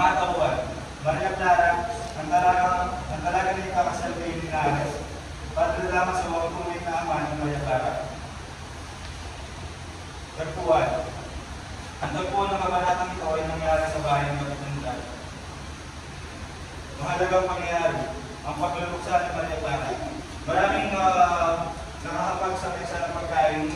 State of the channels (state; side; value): identical; both; correlation 1.00